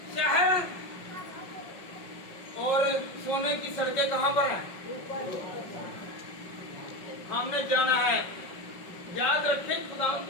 शहर और सोने की सड़कें कहाँ पर हैं? हमने जाना है। याद रखें खुदा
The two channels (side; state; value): right; late; 5.5 ms